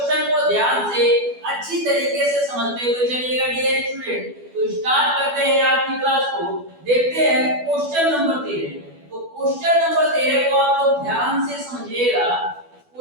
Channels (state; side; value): late; left; 12 ms